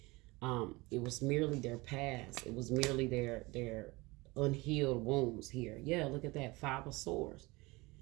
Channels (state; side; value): quieter; left; 23.3 dB